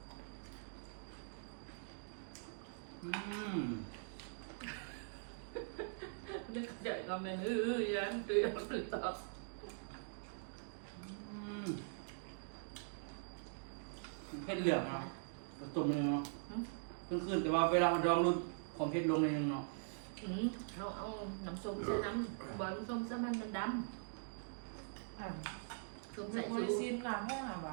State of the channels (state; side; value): silent; left; digital silence